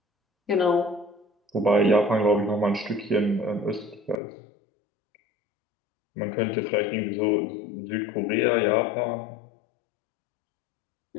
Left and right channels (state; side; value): drops out; right; at 4.2 s